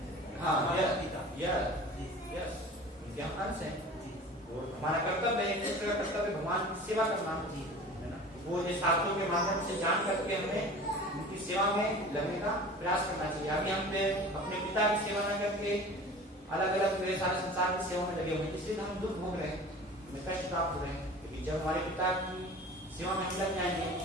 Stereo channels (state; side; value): normal; both; correlation 0.40